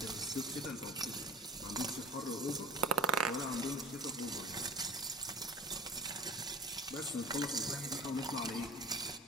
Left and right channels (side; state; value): both; normal; correlation 0.40